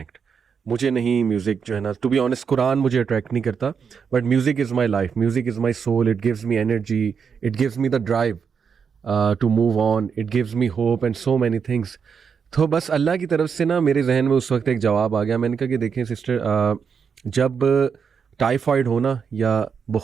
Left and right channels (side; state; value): left; quieter; 6.4 dB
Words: मुझे नहीं म्यूज़िक जो है ना, टू बी ऑनेस्ट कुरान मुझे अट्रैक्ट नहीं करता, but music is my life, music is my soul, it gives me energy, it gives me the drive to move on, it gives me hope and so many things. तो बस अल्लाह की तरफ से ना मेरे जहन में उस वक्त एक जवाब आ गया। मैंने कहा कि देखें सिस्टर, जब टाइफाइड हो ना या